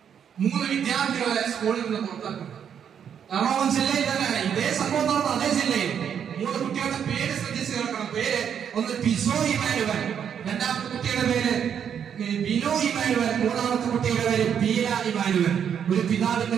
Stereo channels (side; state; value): left; quieter; 8.2 dB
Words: 3 വിദ്യാർത്ഥികളെ സ്കൂളിൽ നിന്ന് പുറത്താക്കുന്നു. എറണാകുളം ജില്ലയിൽ തന്നെയാണ് ഇതേ സംഭവം നടന്ന അതേ ജില്ലയിൽ 3 കുട്ടികളുടെ പേര് ശ്രദ്ധിച്ച് കേൾക്കണം. പേര് ഒന്ന് പിസോ ഇമാനുവൽ, രണ്ടാമത്തെ കുട്ടിയുടെ പേര് ബിനോ ഇമാനുവൽ, മൂന്നാമത്തെ കുട്ടിയുടെ പേര് ബീല ഇമാനുവൽ. ഒരു പിതാവിന്റെ